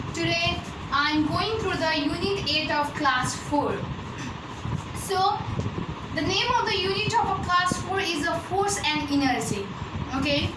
Today I am going through the unit 8 of class 4. So the name of the unit of a class 4 is a force and inertia. Okay.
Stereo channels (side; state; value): both; identical; correlation 1.00